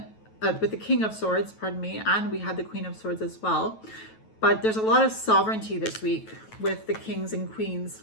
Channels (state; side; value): late; right; 9.2 ms